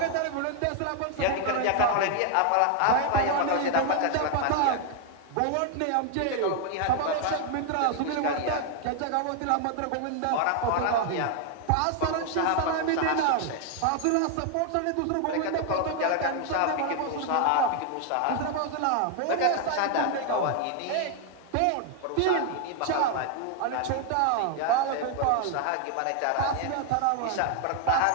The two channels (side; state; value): both; different; correlation 0.00